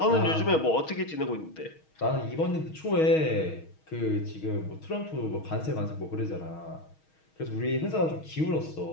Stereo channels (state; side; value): late; right; 6.3 ms